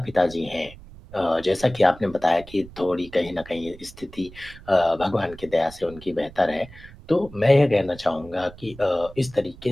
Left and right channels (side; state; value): right; noise; rumble, 19 dB below the sound